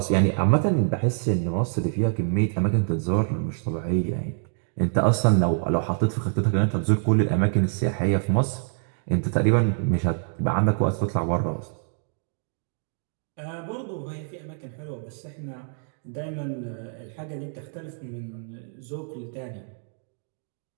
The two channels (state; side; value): silent; left; 61 dB below the other